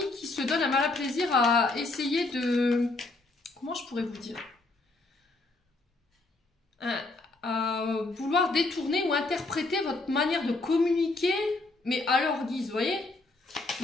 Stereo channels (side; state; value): right; quieter; 3.2 dB